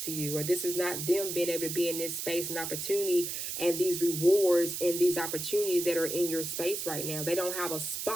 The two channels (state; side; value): noise; right; hiss, 4 dB below the sound